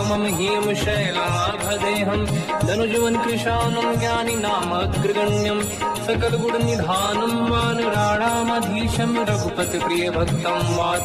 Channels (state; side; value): identical; both; correlation 1.00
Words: ह्यं शैलाभदेहं, धनुजवन कृशानं ज्ञानी नाम अग्रगण्यं। सकल गुण निधानं वानराणामधीशं, रघुपति प्रिय भक्तं